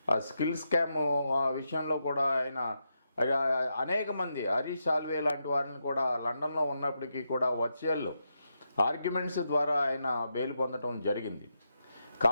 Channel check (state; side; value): inverted; both; correlation -0.84